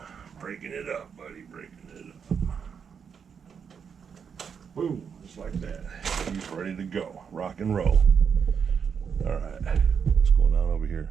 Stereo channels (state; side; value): quieter; left; 6.8 dB